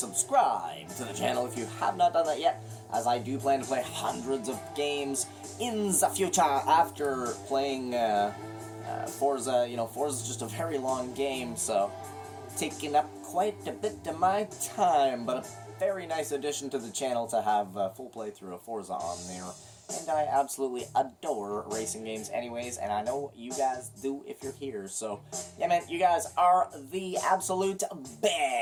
to the channel if you have not done that yet, as I do plan to play hundreds of games in the future after playing Forza. You know, Forza's just a very long game, so taking up quite a bit of my time, but a very nice addition to the channel to have a full playthrough of Forza on there. And I absolutely adore racing games anyways, and I know you guys do if you're here. So, yeah, man, you guys are the absolute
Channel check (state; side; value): identical; both; correlation 1.00